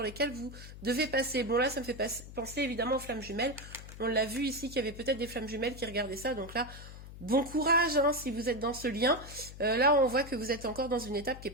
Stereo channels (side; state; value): left; noise; hum, 14 dB below the sound